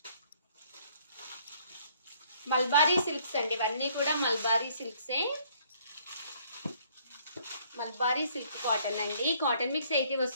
మల్బారీ సిల్క్స్ అండి, ఇవన్నీ కూడా మల్బారీ సిల్క్సే. మల్బారీ సిల్క్ కాటన్ అండి. కాటన్ మిక్స్ 80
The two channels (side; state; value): both; inverted; correlation -0.63